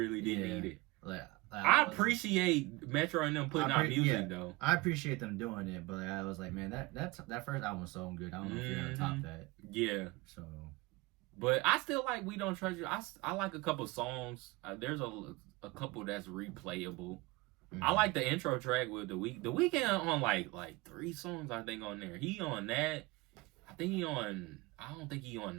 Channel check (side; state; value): left; quieter; 22.4 dB